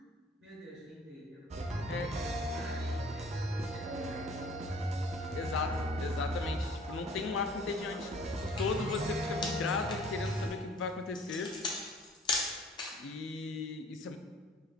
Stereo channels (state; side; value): normal; both; correlation 0.52